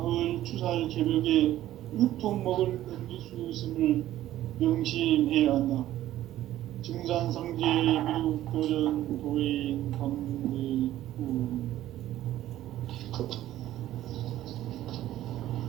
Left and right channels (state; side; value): quieter; left; 13.7 dB